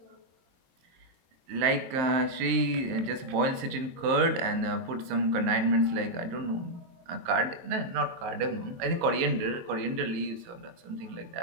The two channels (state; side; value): late; left; 23 ms